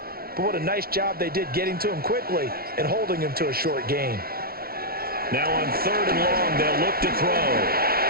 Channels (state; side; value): late; left; 0.44 ms